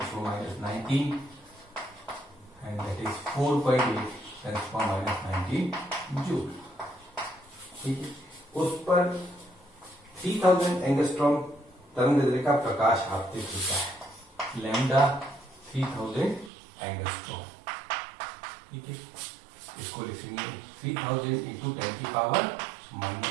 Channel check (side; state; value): left; drops out; at 16.5 s